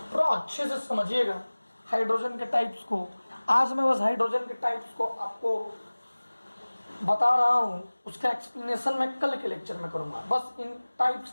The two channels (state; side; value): inverted; both; correlation -1.00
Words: थोड़ा अच्छे से समझिएगा हाइड्रोजन के टाइप्स को। आज मैं बस हाइड्रोजन के टाइप्स को आपको बता रहा हूं, उसका एक्सप्लेनेशन मैं कल के लेक्चर में करूंगा। बस इन टाइप्स